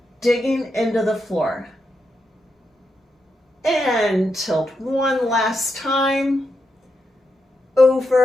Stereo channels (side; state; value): both; normal; correlation 0.84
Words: digging into the floor. And tilt one last time.